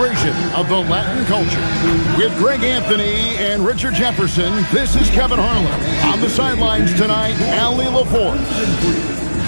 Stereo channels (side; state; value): both; inverted; correlation -1.00